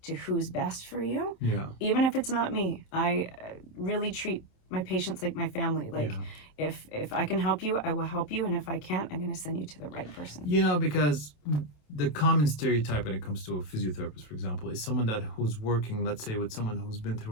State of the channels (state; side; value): late; right; 27 ms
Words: to who's best for you, Yeah. even if it's not me. I really treat my patients like my family. Like Yeah. if I can help you, I will help you, and if I can't, I'm going to send you to the right person. You know, because the common stereotype when it comes to a physiotherapist, for example, is someone who's working, let's say, with someone who's been